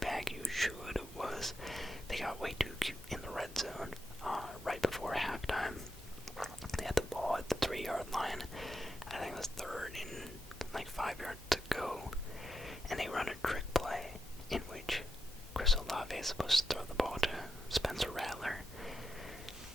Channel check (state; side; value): normal; both; correlation 0.86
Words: you should, was they got way too cute in the red zone right before halftime. They had the ball at the 3-yard line. I think it was 3rd and 5 yards to go, and they run a trick play in which Chris Olave is supposed to throw the ball to Spencer Rattler.